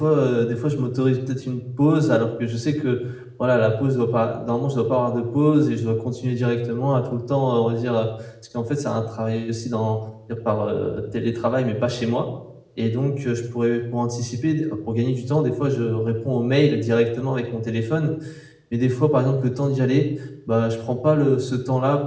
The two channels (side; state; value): both; identical; correlation 1.00